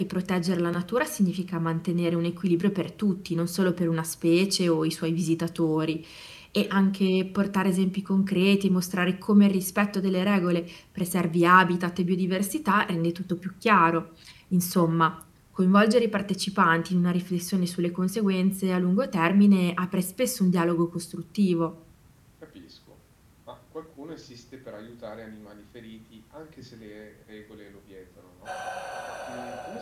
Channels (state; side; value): identical; both; correlation 1.00